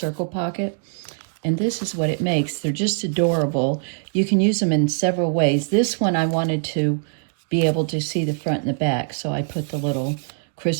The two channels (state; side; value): silent; left; 64 dB below the other